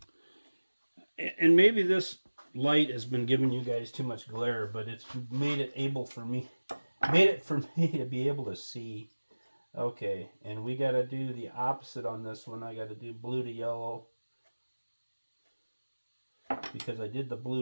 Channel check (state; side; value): inverted; both; correlation -1.00